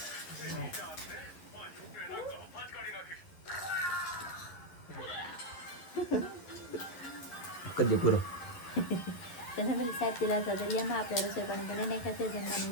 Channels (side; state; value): right; late; 11 ms